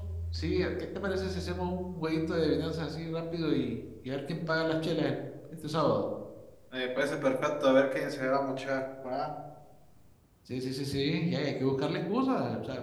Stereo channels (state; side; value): identical; both; correlation 1.00